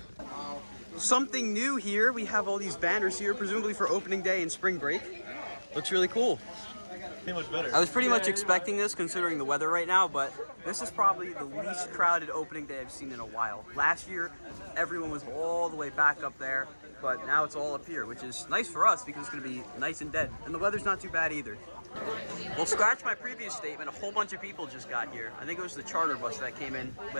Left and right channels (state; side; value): inverted; both; correlation -1.00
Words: Something new here. We have all these banners here, presumably for opening day and spring break. Looks really cool. Much better. I was pretty much expecting this considering the weather right now, but this is probably the least crowded opening day I've seen in a while. Last year, everyone was all the way back up there, but now it's all up here, which is nice for us because it's gonna be nice and dead. And the weather's not too bad either. Well, scratch my previous statement, a whole bunch of people just got here. I think it was the charter bus that came in